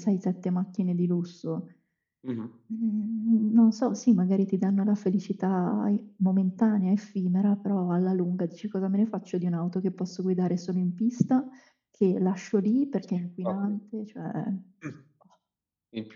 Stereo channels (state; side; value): identical; both; correlation 1.00